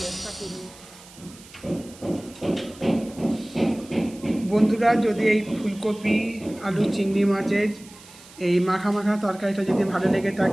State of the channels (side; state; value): right; noise; hiss, 21 dB below the sound